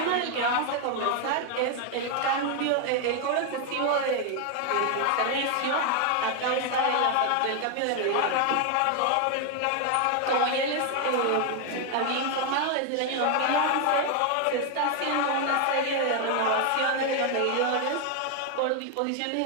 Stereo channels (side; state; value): both; different; correlation 0.01